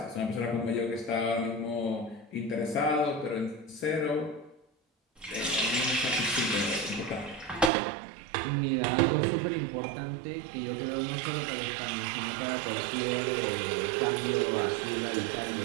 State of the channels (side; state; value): left; drops out; at 7.7 s